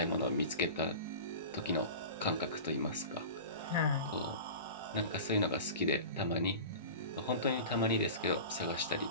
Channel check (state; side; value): inverted; both; correlation -0.33